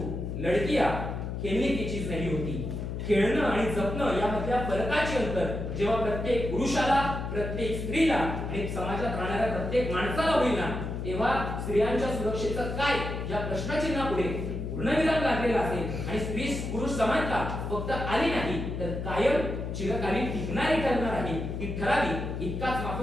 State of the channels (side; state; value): left; noise; hum, 5 dB below the sound